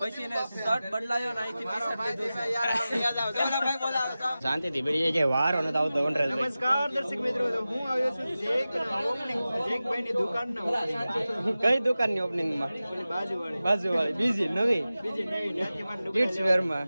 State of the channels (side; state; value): both; inverted; correlation -0.95